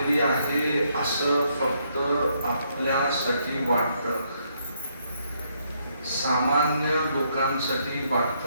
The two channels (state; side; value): inverted; both; correlation -0.73